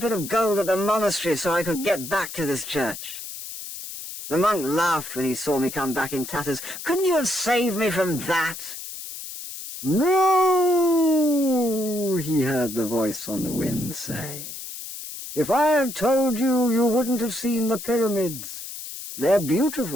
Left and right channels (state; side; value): noise; left; hiss, 10 dB below the sound